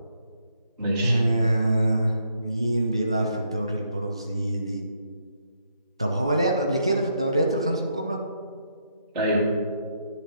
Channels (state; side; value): inverted; both; correlation -0.76